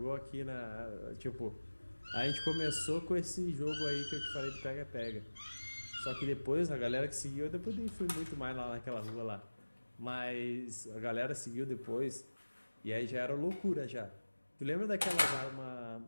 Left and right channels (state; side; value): inverted; both; correlation -1.00